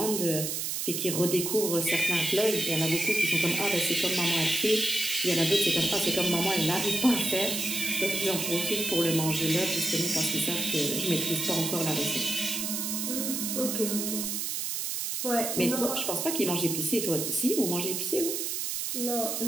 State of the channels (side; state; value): right; noise; hiss, 2 dB below the sound